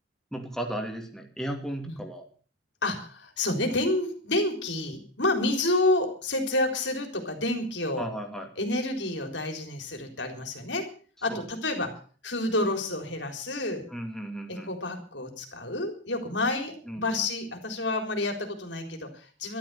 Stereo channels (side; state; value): both; normal; correlation 0.10